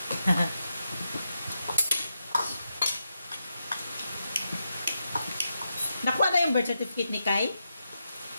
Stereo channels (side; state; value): both; inverted; correlation -0.86